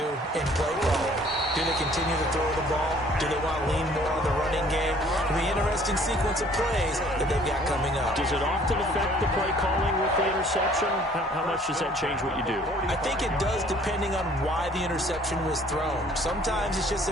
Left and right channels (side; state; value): both; normal; correlation 0.56